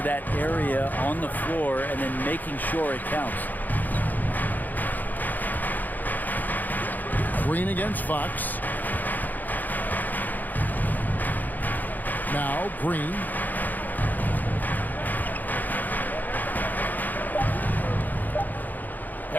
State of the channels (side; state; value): right; late; 0.084 ms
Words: that area on the floor and then making sure it counts. Green against Fox. Now Green.